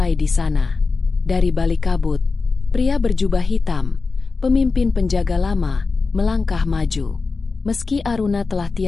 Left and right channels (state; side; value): quieter; right; 4.2 dB